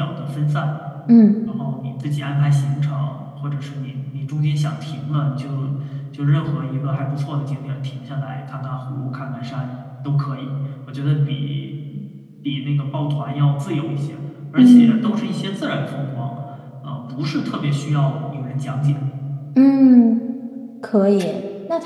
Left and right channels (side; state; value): both; identical; correlation 1.00